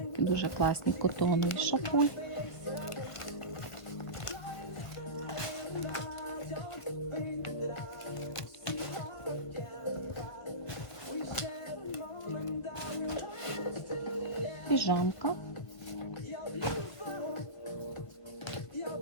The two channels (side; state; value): right; late; 1.5 ms